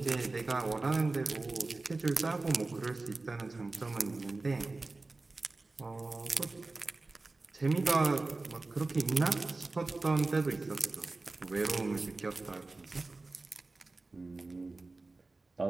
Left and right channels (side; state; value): left; quieter; 3.4 dB